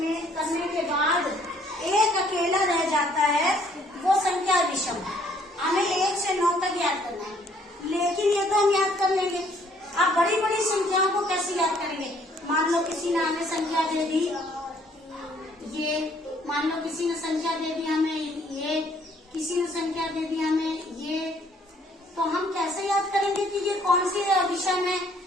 करने के बाद एक अकेला रह जाता है वो संख्या विषम। हमें 1 से 9 तक याद करना है, लेकिन ये तो हम याद कर लेंगे। आप बड़ी बड़ी संख्याओं को कैसे याद करेंगे। मान लो किसी ने हमें संख्या दे दी ये, मान लो किसी ने संख्या दे दी हमें ये, किसी ने संख्या दे दी हमें ये, तो हम कैसे याद करेंगे कि ये कौन सी विषम है।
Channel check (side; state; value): both; normal; correlation 0.63